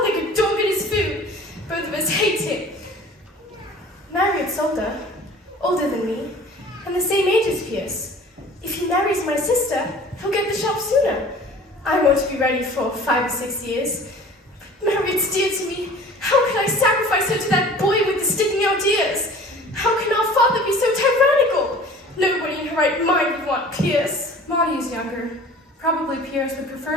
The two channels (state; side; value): normal; both; correlation 0.45